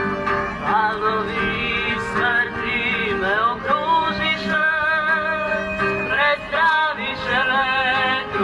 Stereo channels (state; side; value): identical; both; correlation 1.00